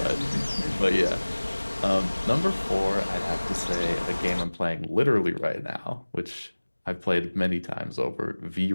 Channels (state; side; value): inverted; both; correlation -1.00